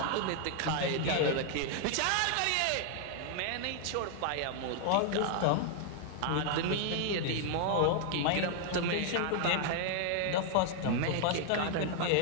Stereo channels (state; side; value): different; both; correlation 0.00